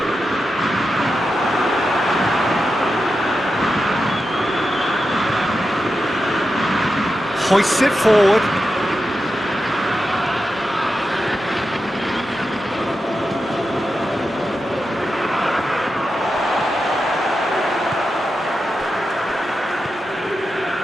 Hoists it forward.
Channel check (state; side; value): normal; both; correlation 0.89